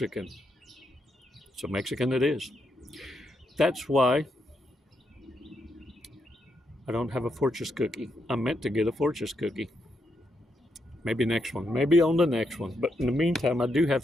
So Mexican it is. That's why I don't have a Fortress cookie. I meant to get a Fortress cookie. Maybe next one. Maybe on the next one. But in the meantime, I do have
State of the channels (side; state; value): both; normal; correlation 0.80